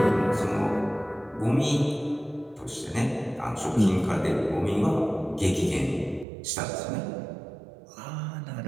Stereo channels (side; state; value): left; drops out; at 6.2 s